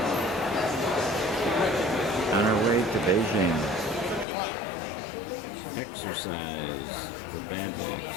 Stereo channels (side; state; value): right; drops out; at 4.2 s